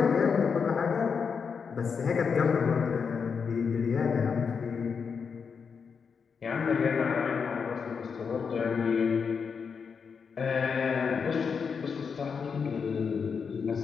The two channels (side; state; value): right; quieter; 6.0 dB